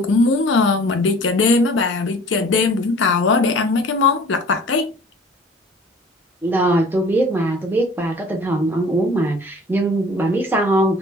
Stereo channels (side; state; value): both; normal; correlation 0.48